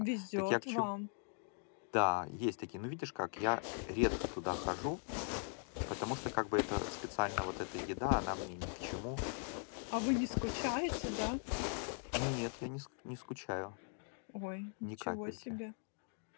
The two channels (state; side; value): silent; right; 51 dB below the other